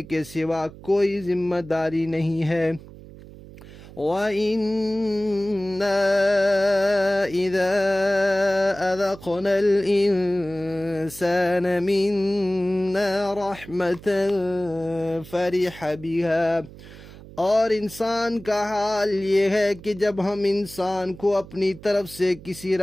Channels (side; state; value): right; noise; hum, 18 dB below the sound